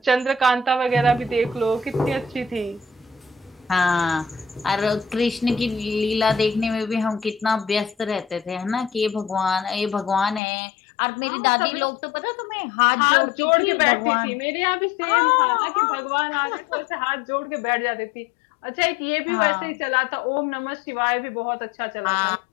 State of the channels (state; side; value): drops out; right; at 10.4 s